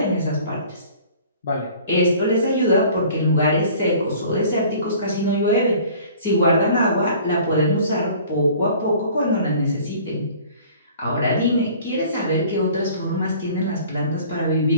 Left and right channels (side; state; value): both; inverted; correlation -0.49